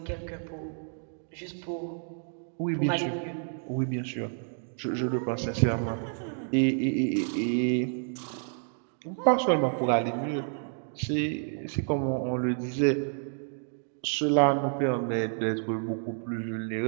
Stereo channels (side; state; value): left; silent; 58 dB below the other